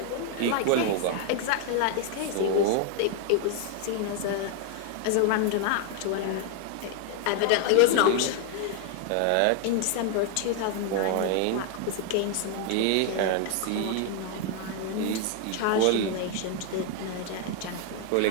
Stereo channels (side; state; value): both; different; correlation 0.00